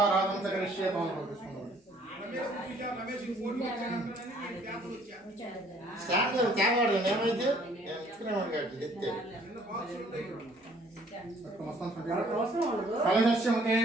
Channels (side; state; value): both; normal; correlation 0.59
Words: చ కరిష్యే. కలశస్యముతే